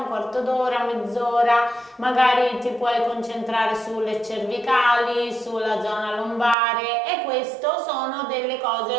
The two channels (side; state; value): left; drops out; at 6.6 s